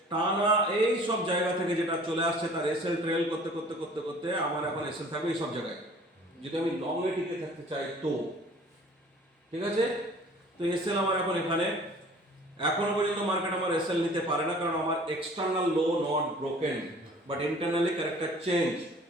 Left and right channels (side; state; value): both; normal; correlation 0.50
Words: টানা এই সব জায়গা থেকে যেটা চলে আসছে, তার এসএল ট্রেল করতে করতে করতে করতে আমার এখন এসএল থাকবে এই সব জায়গায়, যদি আমি লং এ টিকে থাকতে চাই তো। ঠিক আছে? তো এসএল আমার এখন এখানে। এখনো পর্যন্ত মার্কেট আমার এসএল নিতে পারে না, কারণ আমার external low not broken, but internally character change.